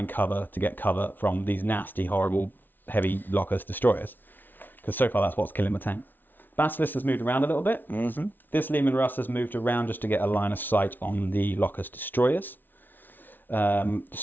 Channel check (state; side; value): late; right; 0.090 ms